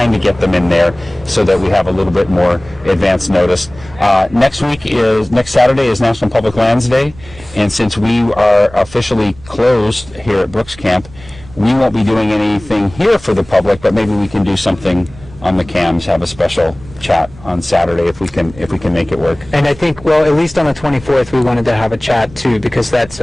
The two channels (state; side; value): noise; right; rumble, 20 dB below the sound